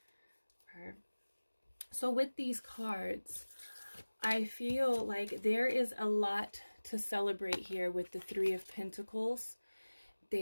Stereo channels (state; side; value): inverted; both; correlation -1.00